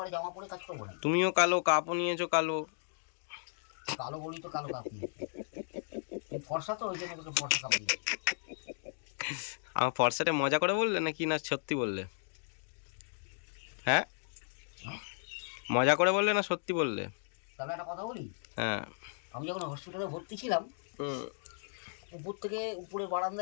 জামা পরে কাজ করবো না? তুমিও কালো, কাপও নিয়েছো কালো। কালো বলি তো কালো কাপ নিয়ে, ফর্সা তো ওই জন্য তোকে ফর্সা কাপ দিই। আমার ফর্সাটা মজা করে বললে নাকি না সত্যি বললে? হ্যাঁ, মজা করে বললে না সত্যি বললে? তাহলে একটা কথা বলি। হ্যাঁ, আমি যখন হসপিটালে ভর্তি ছিলাম, উপর থেকে উপরে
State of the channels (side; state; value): right; silent; digital silence